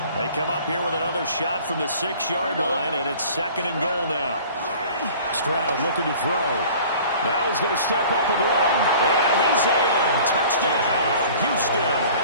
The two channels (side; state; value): both; inverted; correlation -0.47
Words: They come up here with another shot from the 6-yard line, and it's 2nd and goal now. Stroud looking to throw. Now he's going to step up and run. And he's in. Touchdown, Houston.